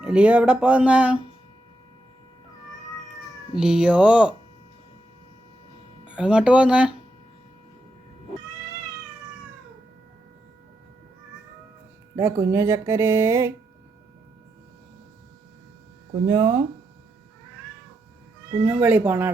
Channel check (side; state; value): both; normal; correlation 0.84